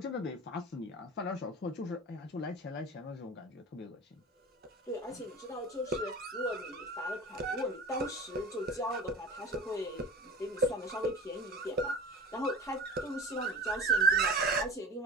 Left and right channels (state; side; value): normal; both; correlation 0.36